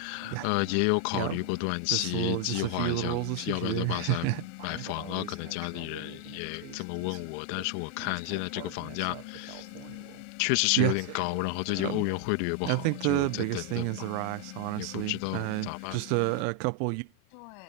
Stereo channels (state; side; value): different; both; correlation 0.00